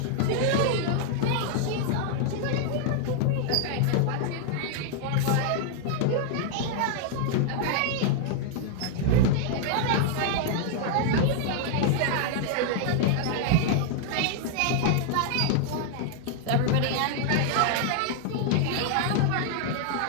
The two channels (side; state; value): both; different; correlation 0.00